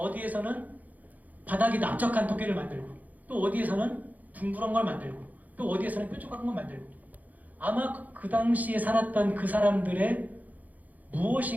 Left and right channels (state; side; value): late; left; 0.080 ms